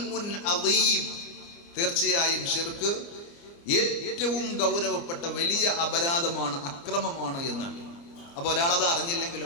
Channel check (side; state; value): right; late; 29 ms